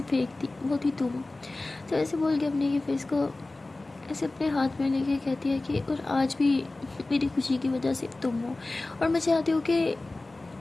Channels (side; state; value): right; quieter; 3.0 dB